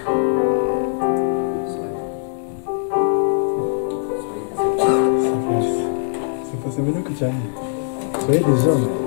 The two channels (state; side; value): silent; right; digital silence